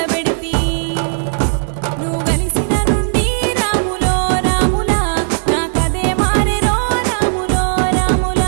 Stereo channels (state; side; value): silent; left; digital silence